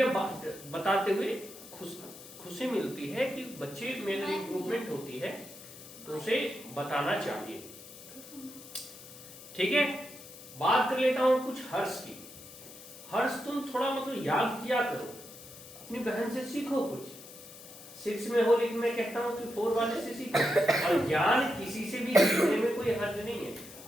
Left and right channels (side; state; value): left; noise; hiss, 16 dB below the sound